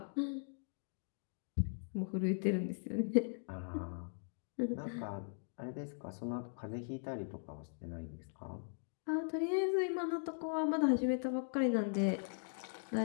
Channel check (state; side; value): silent; right; digital silence